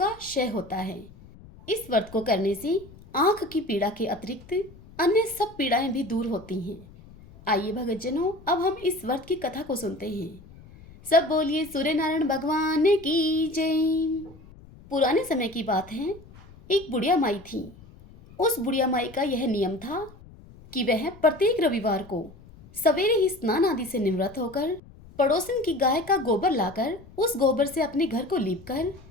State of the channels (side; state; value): left; noise; rumble, 21 dB below the sound